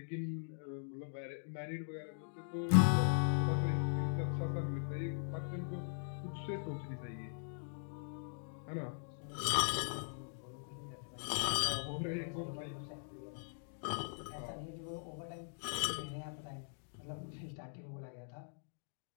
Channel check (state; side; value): silent; right; digital silence